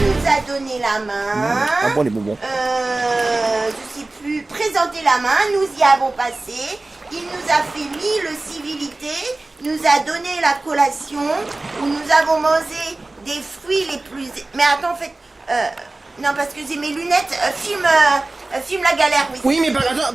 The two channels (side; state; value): left; quieter; 3.0 dB